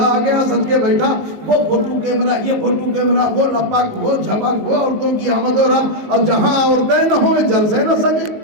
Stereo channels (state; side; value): late; left; 18 ms